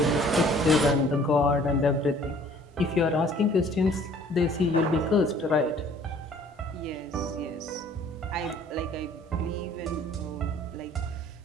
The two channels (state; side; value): normal; both; correlation 0.55